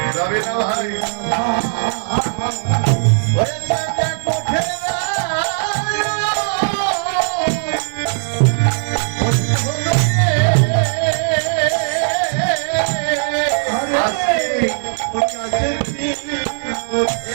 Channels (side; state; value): left; silent; 65 dB below the other